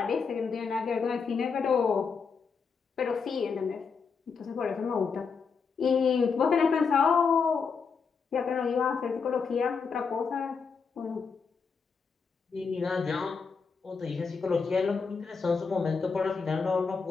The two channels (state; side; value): quieter; right; 5.4 dB